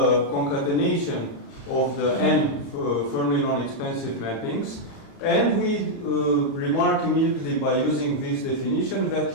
concatenation of the n Fermi non-expansive mappings, and we remark immediately by using this definition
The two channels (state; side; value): late; right; 30 ms